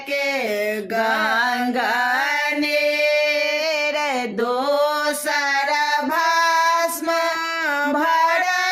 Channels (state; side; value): identical; both; correlation 1.00